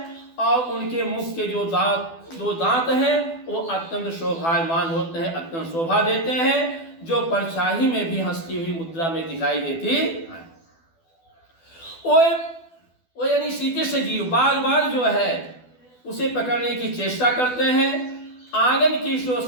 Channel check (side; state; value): right; late; 12 ms